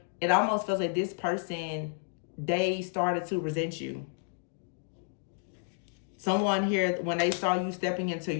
it almost feels like this person, they started to resent you. Someone here, when they saw you stepping into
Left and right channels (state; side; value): silent; right; digital silence